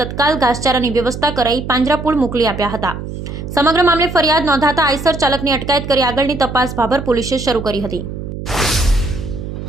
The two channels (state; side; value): noise; right; hum, 8 dB below the sound